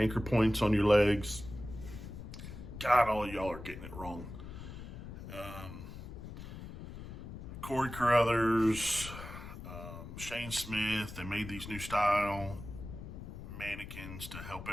points on your legs. God, all of y'all are getting it wrong. Corey Carruthers, Shane Smith, they made these new style mannequins to help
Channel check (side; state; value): left; noise; rumble, 11 dB below the sound